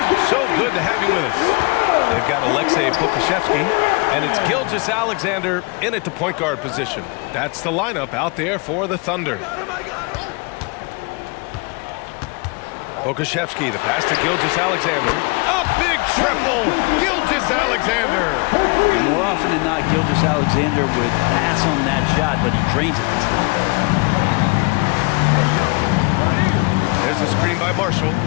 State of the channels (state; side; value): quieter; right; 29.7 dB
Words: So good to have you with us. They've got Alexei Kokoszewski, and it's Gilgeous-Alexander in at the point guard position. That's the lineup out there for the Thunder. Pokashevsky, the pass to Gilgeous-Alexander. A big triple! Gilgeous-Alexander! More often than not, Gilgeous-Alexander would pass on that shot, but he drains it this time. There's a screen by Marshall